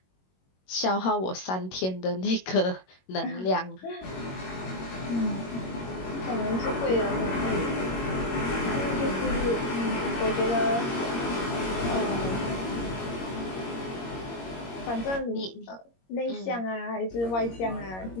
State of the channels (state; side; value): late; right; 22 ms